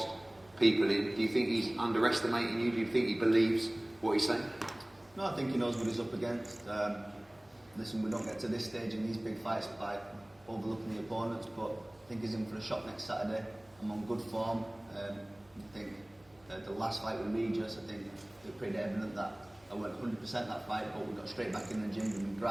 people in. Do you think he's underestimating you? Do you think he believes what he's saying? No, I think he knows what he's up against. Listen, we don't get to this stage in these big fights by overlooking the opponents, but I think he's in for a shot next Saturday. I'm on good form. I think the last fight with Regis, I think it was pretty evident that I went 100% that fight, but we got straight back in the gym, we've been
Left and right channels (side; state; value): right; noise; hum, 30 dB below the sound